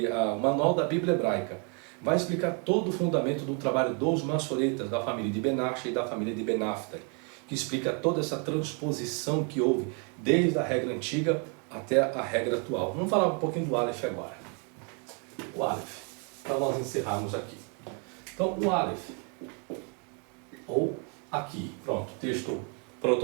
o manual da Bíblia Hebraica. Vai explicar todo o fundamento do trabalho dos maçoretas, da família de Benashe e da família de Benafta, que explica toda essa transposição que houve desde a regra antiga até a regra atual. Vamos falar um pouquinho do Aleph agora. O Aleph, para nós encerrarmos aqui. Então, o Aleph, ou aqui, pronto, texto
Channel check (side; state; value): left; quieter; 37.4 dB